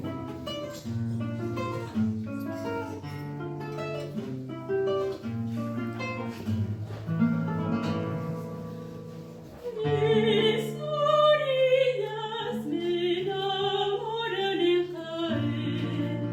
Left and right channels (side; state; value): both; identical; correlation 1.00